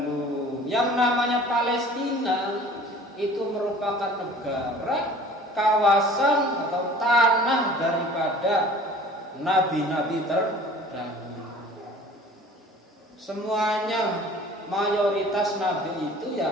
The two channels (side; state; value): both; normal; correlation 0.46